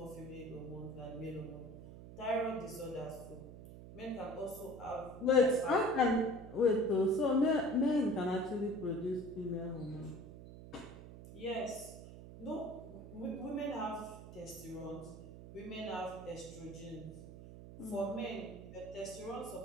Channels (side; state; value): right; noise; hum, 14 dB below the sound